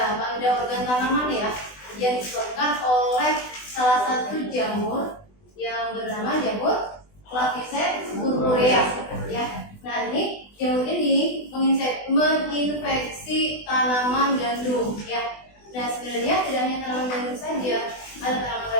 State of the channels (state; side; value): late; right; 20 ms